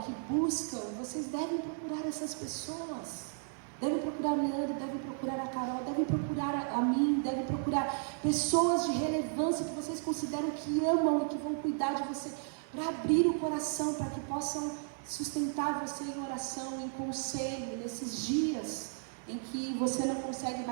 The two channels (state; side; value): silent; left; 55 dB below the other